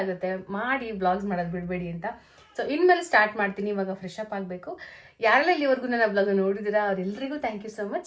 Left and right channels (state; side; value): identical; both; correlation 1.00